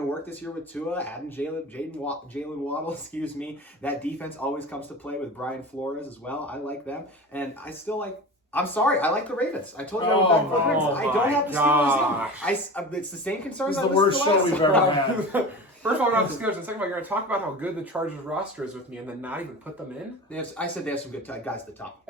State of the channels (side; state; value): both; normal; correlation 0.32